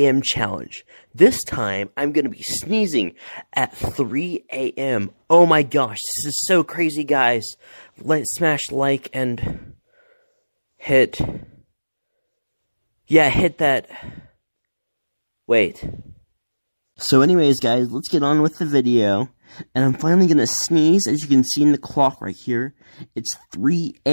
challenge. This time, I'm going to be sneezing at 3 a.m. Oh my gosh, this is so crazy, guys. Smash like and hit... Yeah, hit that... Wait. So anyways, guys, let's get on with the video. And I'm finally going to sneeze, as you can see in the clock right here. It's 3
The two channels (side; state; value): both; inverted; correlation -1.00